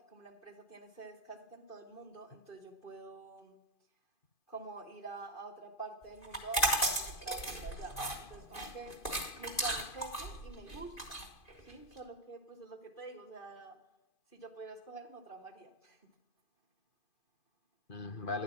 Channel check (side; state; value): right; late; 2.5 ms